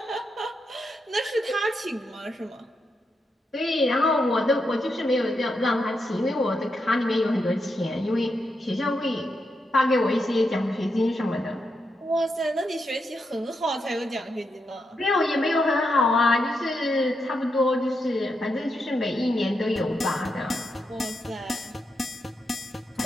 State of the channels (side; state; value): both; normal; correlation 0.84